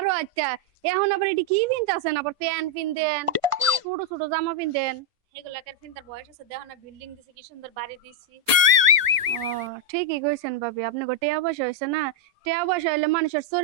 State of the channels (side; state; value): left; late; 1.5 ms